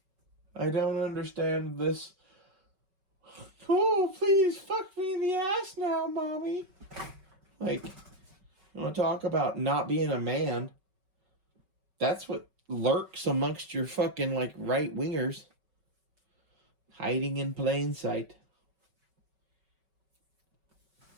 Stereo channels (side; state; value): left; late; 5.3 ms